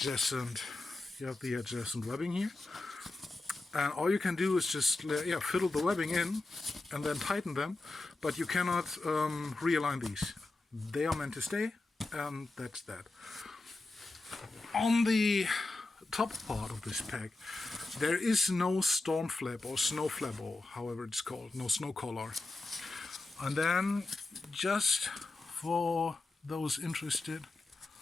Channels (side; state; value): right; quieter; 3.2 dB